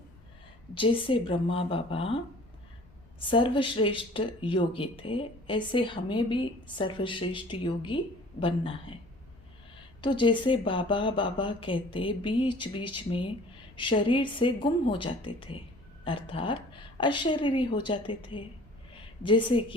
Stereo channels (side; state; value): left; noise; rumble, 26 dB below the sound